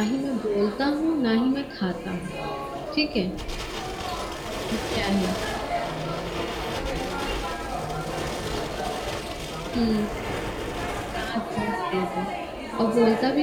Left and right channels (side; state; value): both; identical; correlation 1.00